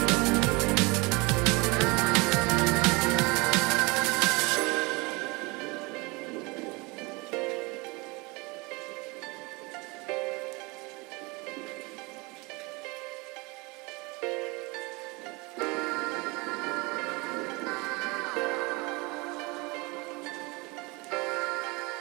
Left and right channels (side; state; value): left; quieter; 26.2 dB